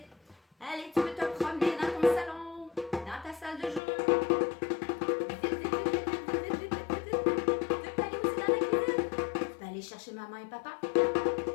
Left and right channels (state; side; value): drops out; right; at 3.8 s